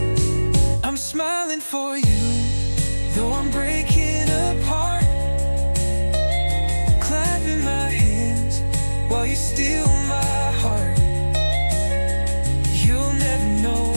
I'm smiling for you, though I'm breaking apart, clapping my hands while you steal my heart. You'll never know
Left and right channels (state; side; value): inverted; both; correlation -1.00